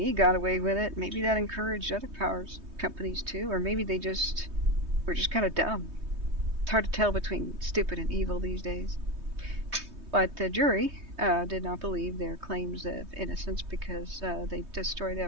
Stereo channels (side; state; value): left; late; 3.2 ms